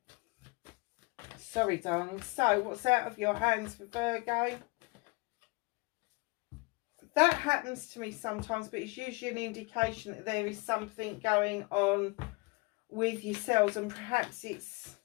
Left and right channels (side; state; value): right; quieter; 27.8 dB